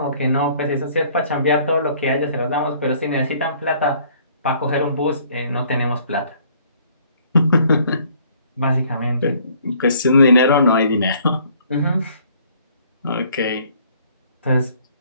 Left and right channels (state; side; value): inverted; both; correlation -0.60